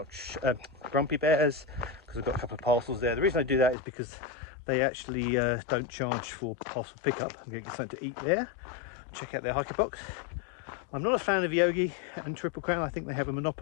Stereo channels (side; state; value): right; drops out; at 3.8 s